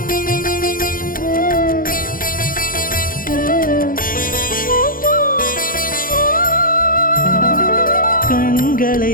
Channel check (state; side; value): late; right; 0.41 ms